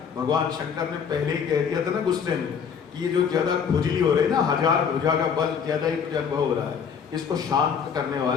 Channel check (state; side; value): quieter; right; 6.9 dB